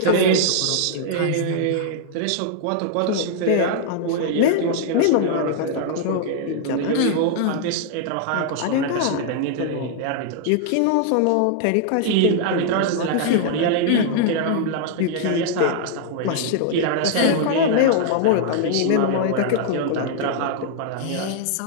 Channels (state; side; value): different; both; correlation -0.01